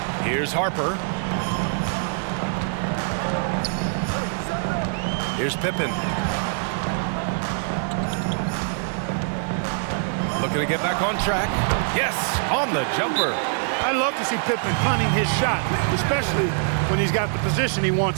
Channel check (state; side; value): silent; left; 63 dB below the other